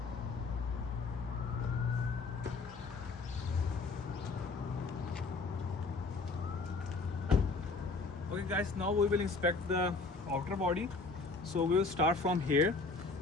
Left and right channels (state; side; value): quieter; right; 3.9 dB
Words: Okay guys, now we will inspect the outer body. So we will start from here.